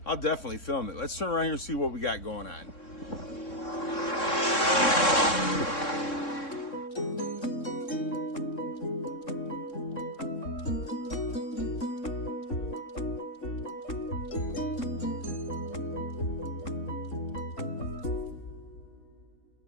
I'll definitely film it. Let's turn around here and see what we got going on.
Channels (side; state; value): right; late; 3.7 ms